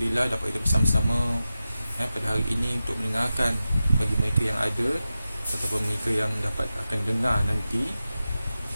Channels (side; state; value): both; inverted; correlation -0.93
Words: dapat kita bersama-sama pada hari ini untuk mendengarkan bagi mereka yang ada ataupun mereka yang dapat akan dengar nanti.